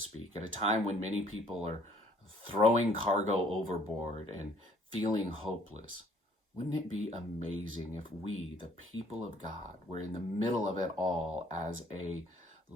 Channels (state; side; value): normal; both; correlation 0.60